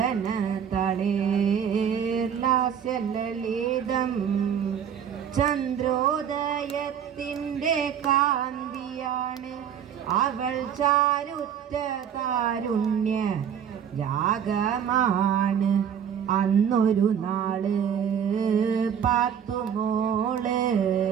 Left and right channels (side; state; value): left; quieter; 8.4 dB